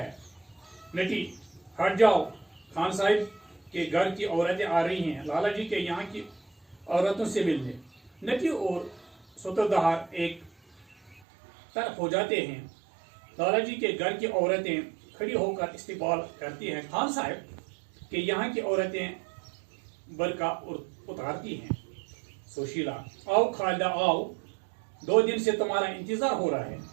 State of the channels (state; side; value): drops out; left; at 11.2 s